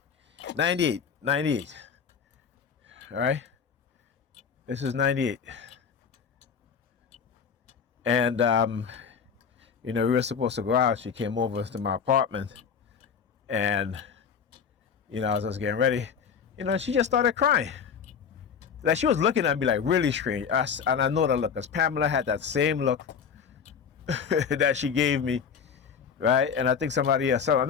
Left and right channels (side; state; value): right; quieter; 6.7 dB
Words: 98. All right. This is 98. And you know, we were supposed to go out. She came over to my apartment, and, you know, as I was getting ready, you know, she just started crying. Like, she was looking at me like really strange. And I know that look, because Pamela had that same look that she gave me, right? And I think somebody else,